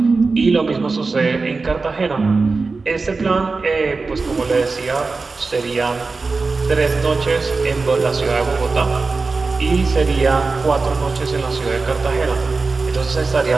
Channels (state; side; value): quieter; left; 4.0 dB